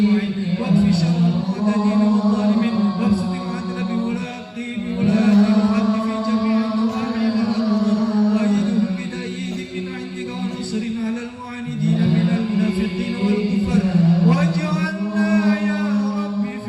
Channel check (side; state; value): both; identical; correlation 1.00